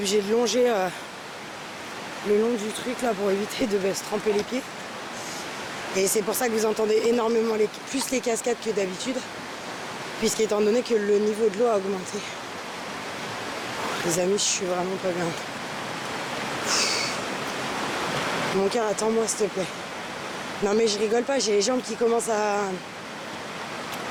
de longer le long du truc là pour éviter de se tremper les pieds. Et c'est pour ça que vous entendez énormément plus les cascades que d'habitude, puisqu'étant donné que le niveau de l'eau a augmenté. Les amis, je suis vraiment pas bien. Mon cœur, attends-moi s'il te plaît. Non mais je rigole pas, j'ai les jambes qui commencent à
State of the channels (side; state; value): both; identical; correlation 1.00